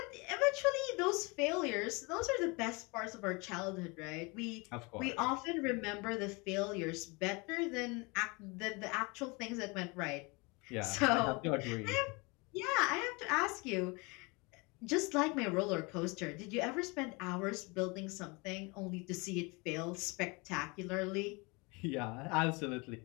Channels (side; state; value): right; quieter; 27.8 dB